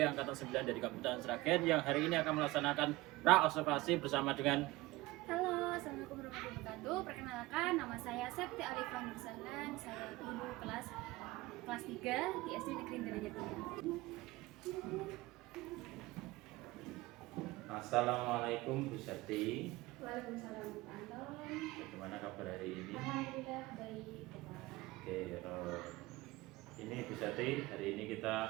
Angkatan 9 dari Kabupaten Sragen yang hari ini akan melaksanakan pra-observasi bersama dengan. Halo, assalamualaikum warahmatullahi wabarakatuh. Perkenalkan, nama saya Septi Alifah Nursalan. Saya guru kelas 3 di SD Negeri Denya 3. Assalamualaikum Bu Septi. Waalaikumsalam, Pak Anton. Bagaimana kabar hari ini? Alhamdulillah baik. Oke, ini Bu Septi, hari ini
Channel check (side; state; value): left; quieter; 20.0 dB